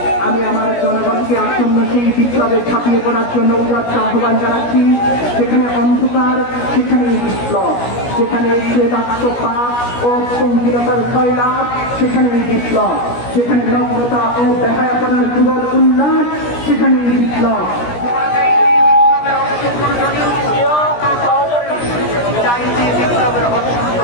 আমি আমার জনগণকে আসন্ন সেই বিপ্লবে ছাপিয়ে পড়ার জন্য উদাত্ত আহ্বান জানাচ্ছি। যেখানে অন্ধকার সেখানেই বিপ্লব, যেখানে প্রেতাত্মপাত ও পঙ্কিলতার জয়লাভ সেখানেই বিপ্লব, যেখানে নগ্নতা ও বেহায়াপনার যুগল উল্লাস সেখানেই বিপ্লব।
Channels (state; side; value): late; right; 17 ms